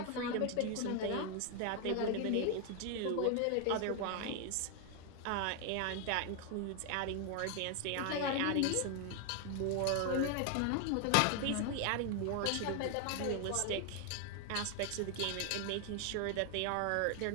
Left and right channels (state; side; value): different; both; correlation 0.00